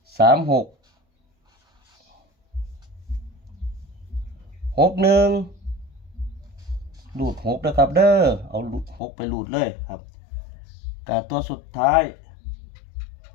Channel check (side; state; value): right; drops out; at 9.0 s